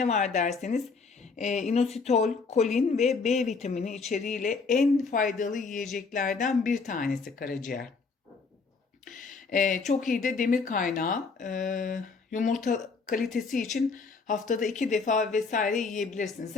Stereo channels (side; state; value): right; quieter; 4.6 dB